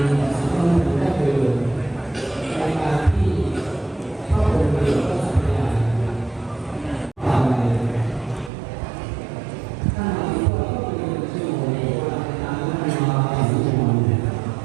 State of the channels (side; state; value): left; drops out; at 8.5 s